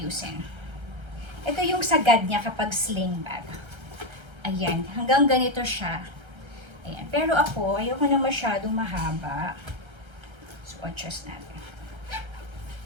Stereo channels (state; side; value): late; left; 1.3 ms